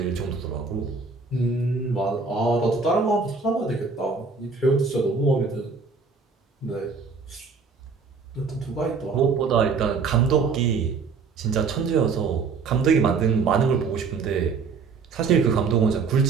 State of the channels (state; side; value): quieter; left; 4.9 dB